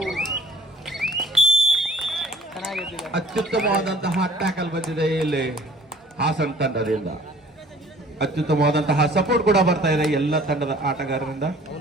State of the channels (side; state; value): both; normal; correlation 0.54